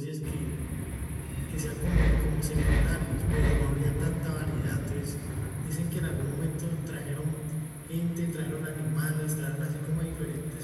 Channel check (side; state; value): both; identical; correlation 1.00